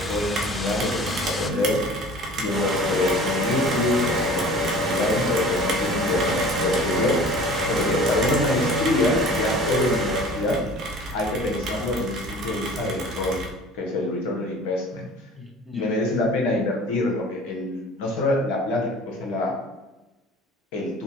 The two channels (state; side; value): normal; both; correlation 0.44